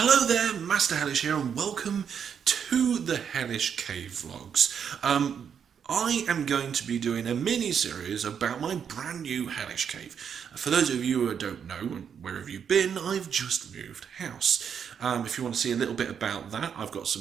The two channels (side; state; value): left; quieter; 7.6 dB